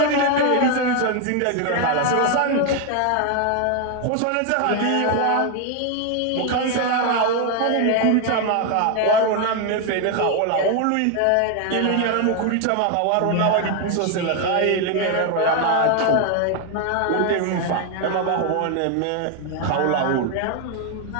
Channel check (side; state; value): both; different; correlation 0.01